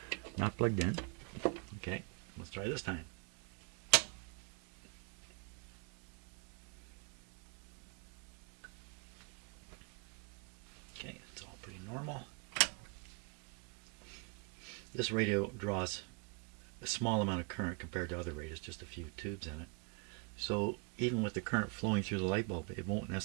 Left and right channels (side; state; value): left; quieter; 35.5 dB